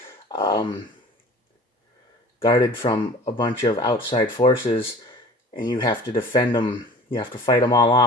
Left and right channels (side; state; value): both; normal; correlation 0.43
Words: guarded from a bunch of outside forces, and you have to defend them. You have to fight them all